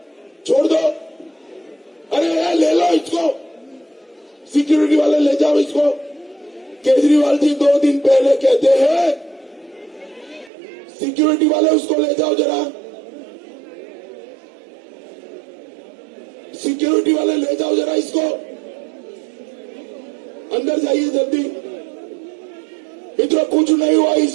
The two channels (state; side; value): drops out; left; at 10.5 s